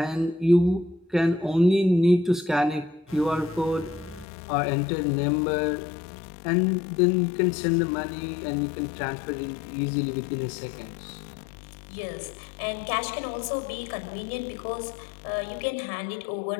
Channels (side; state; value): right; drops out; at 4.2 s